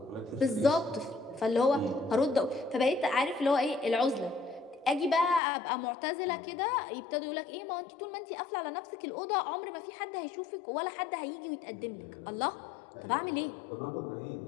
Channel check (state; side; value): drops out; right; at 5.4 s